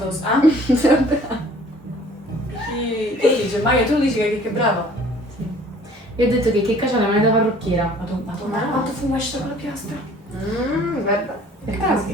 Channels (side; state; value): both; normal; correlation 0.53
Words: Ah? Sono brava. Tu dici, Maia, tu dici che è brava. Io ho detto che Checca c'ha la mano da parrucchiera. Ma quanto fumo esce con la piastra? Guarda. Perché Ah, sì,